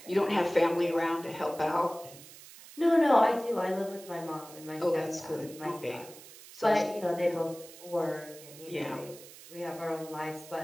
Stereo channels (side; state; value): right; noise; hiss, 18 dB below the sound